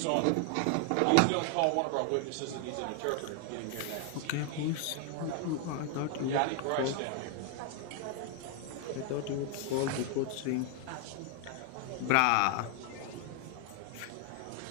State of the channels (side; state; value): both; different; correlation 0.00